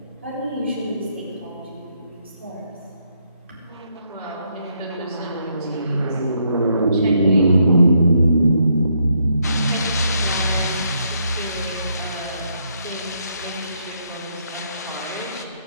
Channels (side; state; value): both; inverted; correlation -0.75